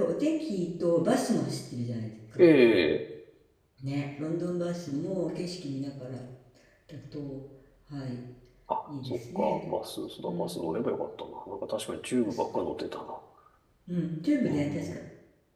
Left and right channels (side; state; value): both; identical; correlation 1.00